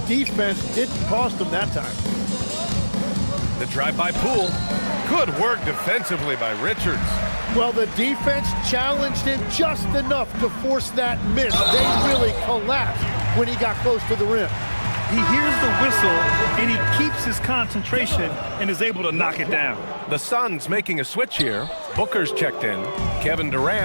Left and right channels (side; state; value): both; inverted; correlation -1.00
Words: defense didn't cost them that time. The drive by Poole. Good work defensively by Richards. Well, the defense challenged him just enough to force that miss. They really collapsed when he got close to the rim. He hears the whistle, and he keeps his concentration and is able to knock it down. The Suns making a switch here. Booker's checked in. Kevin